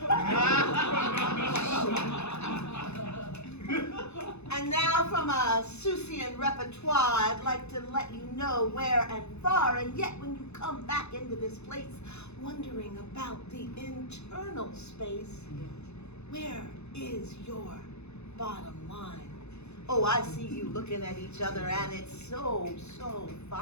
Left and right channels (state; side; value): late; right; 0.81 ms